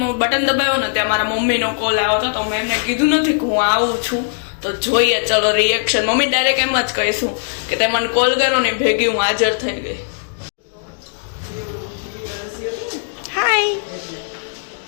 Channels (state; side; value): silent; right; digital silence